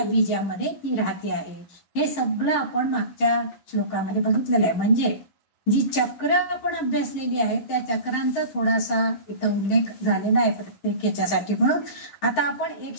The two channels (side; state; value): right; late; 11 ms